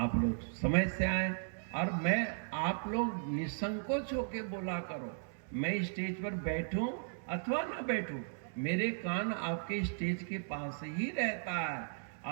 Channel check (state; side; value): silent; left; digital silence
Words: लोग समय से आए, और मैं आप लोग निसंकोच होकर बोला करो। मैं स्टेज पर बैठूं अथवा ना बैठूं, मेरे कान आपके स्टेज के पास ही रहता है,